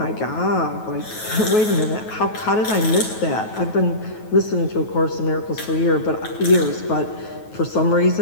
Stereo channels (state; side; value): late; right; 9.3 ms